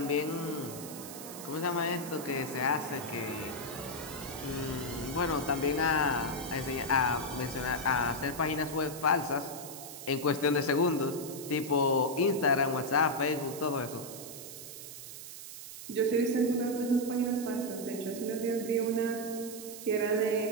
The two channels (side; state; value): right; noise; hiss, 12 dB below the sound